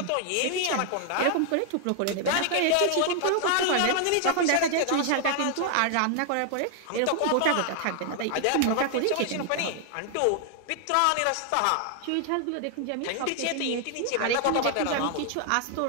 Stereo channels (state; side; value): different; both; correlation 0.00